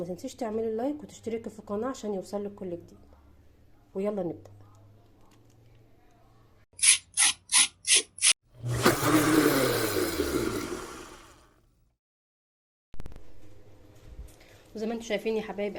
تنسيش تعملي لايك وتشتركي في القناة عشان يوصلك كل جديد. ويلا نبدأ. وزي ما انتم شايفين يا حبايب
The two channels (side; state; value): both; identical; correlation 1.00